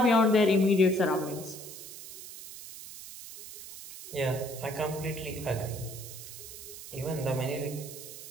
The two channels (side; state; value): right; noise; hiss, 13 dB below the sound